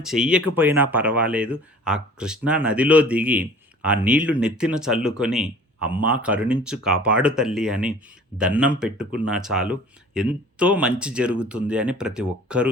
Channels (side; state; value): both; normal; correlation 0.47